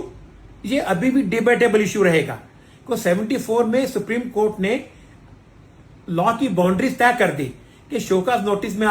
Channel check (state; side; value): identical; both; correlation 1.00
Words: ये अभी भी डिबेटेबल इशू रहेगा, क्योंकि 74 में सुप्रीम कोर्ट ने लॉ की बाउंड्रीज तय कर दी कि शोकाज नोटिस में